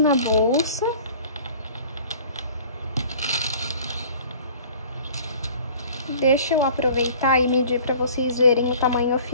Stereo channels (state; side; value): inverted; both; correlation -0.48